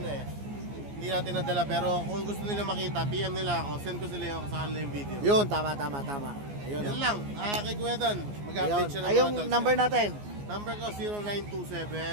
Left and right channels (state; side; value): late; left; 14 ms